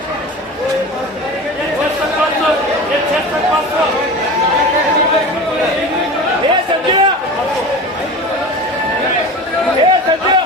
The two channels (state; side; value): normal; both; correlation 0.32